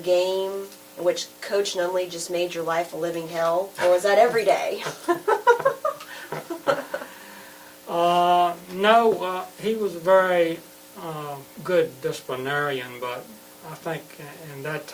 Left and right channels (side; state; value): both; identical; correlation 1.00